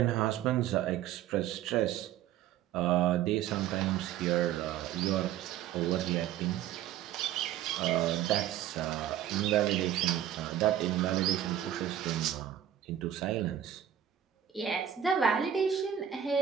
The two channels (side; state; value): left; quieter; 10.6 dB